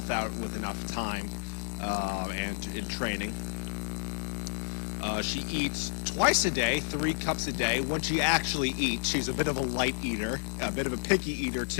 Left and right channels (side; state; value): right; silent; digital silence